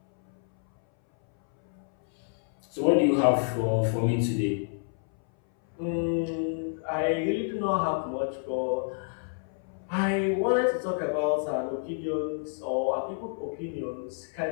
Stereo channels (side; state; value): right; silent; 59 dB below the other